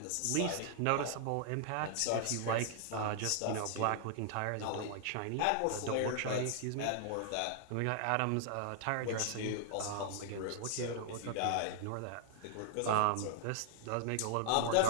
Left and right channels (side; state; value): both; different; correlation -0.01